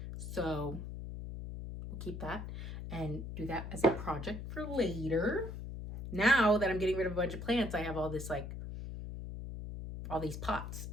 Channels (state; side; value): noise; left; hum, 7 dB below the sound